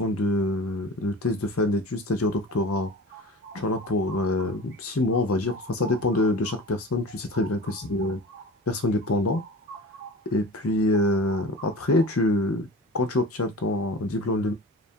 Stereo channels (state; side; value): normal; both; correlation 0.36